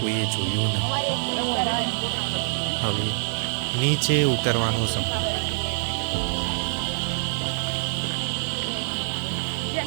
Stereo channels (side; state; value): left; silent; digital silence